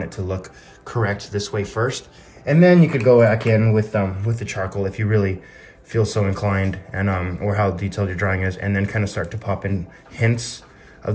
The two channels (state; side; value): identical; both; correlation 1.00